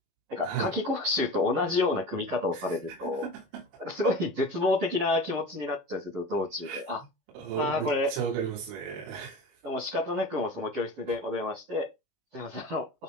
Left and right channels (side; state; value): left; late; 19 ms